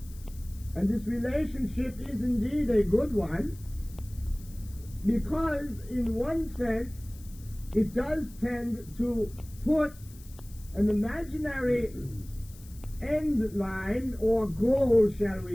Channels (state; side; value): noise; left; hiss, 22 dB below the sound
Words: And this relationship is indeed a good one, because in one sense it does tend to put an imaginary end line or goal, shall